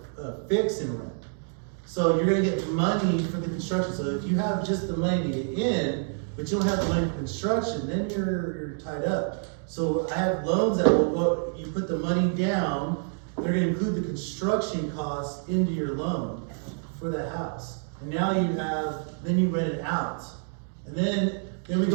fix and rent. So you're gonna get money for the construction. So if you have just the money to get in, but you don't have the money for construction, then you're tied up. So I have loans that will go. You put the money down. They're gonna include the construction costs into your loan for that house. And now then you rent it out. And then we go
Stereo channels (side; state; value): left; silent; 60 dB below the other